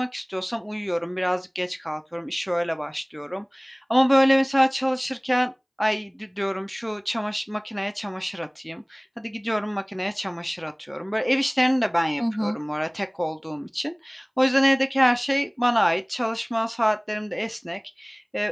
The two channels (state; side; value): identical; both; correlation 1.00